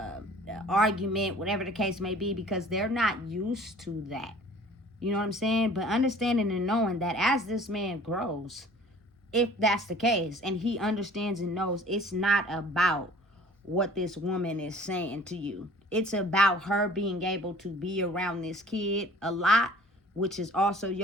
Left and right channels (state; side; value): normal; both; correlation 0.49